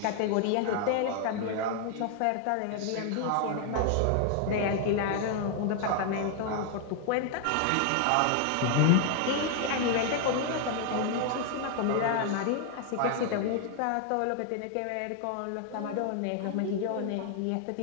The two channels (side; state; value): both; different; correlation 0.00